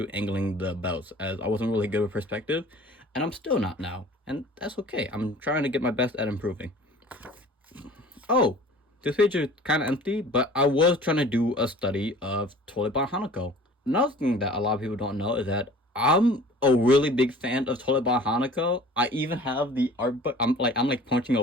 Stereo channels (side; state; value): both; normal; correlation 0.46